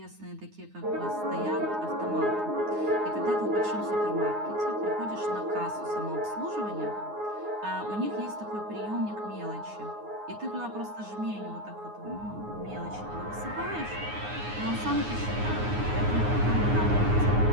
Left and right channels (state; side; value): late; left; 9.6 ms